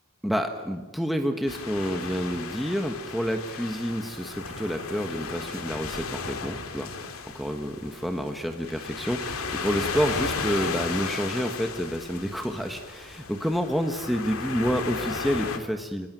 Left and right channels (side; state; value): both; normal; correlation 0.74